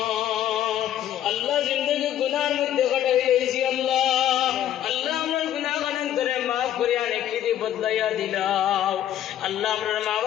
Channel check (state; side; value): quieter; right; 11.4 dB